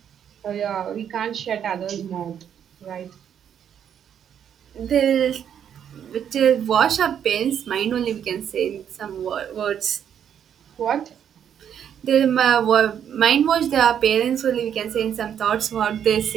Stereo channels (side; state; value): left; quieter; 8.9 dB